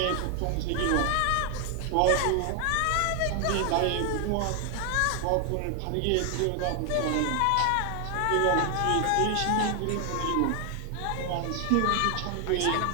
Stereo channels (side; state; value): both; different; correlation 0.00